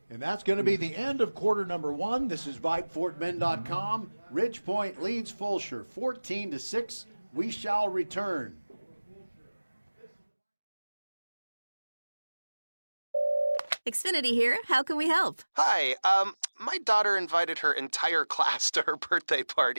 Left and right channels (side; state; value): both; inverted; correlation -1.00